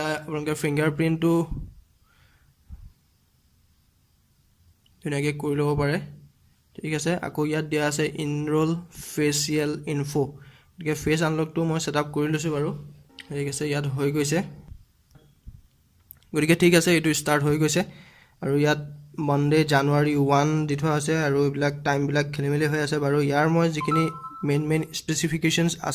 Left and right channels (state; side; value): identical; both; correlation 1.00